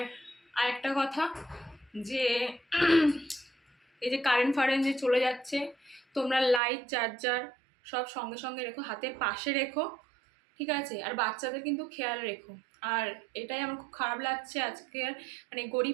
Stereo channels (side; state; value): left; drops out; at 6.6 s